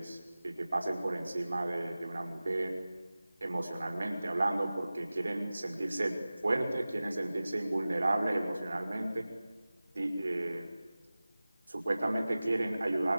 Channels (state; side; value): inverted; both; correlation -0.97